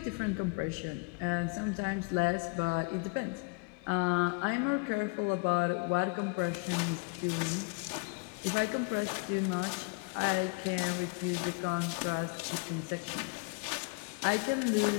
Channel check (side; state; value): right; quieter; 30.9 dB